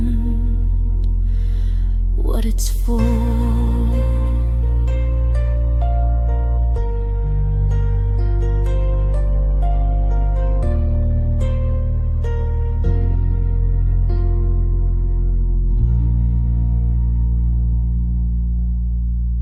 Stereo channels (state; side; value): identical; both; correlation 1.00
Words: what it's for.